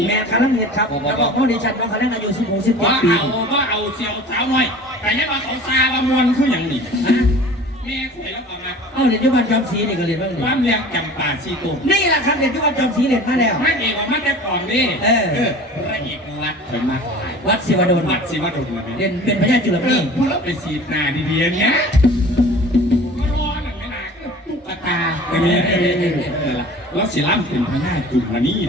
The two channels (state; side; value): normal; both; correlation 0.42